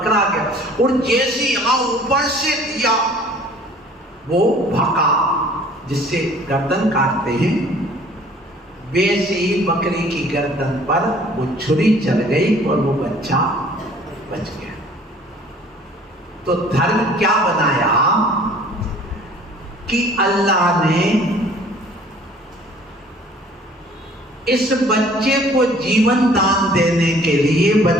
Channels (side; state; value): both; normal; correlation 0.53